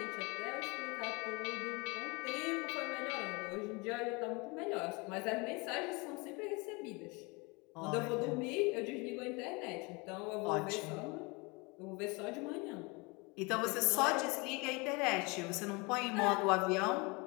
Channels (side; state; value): right; quieter; 27.7 dB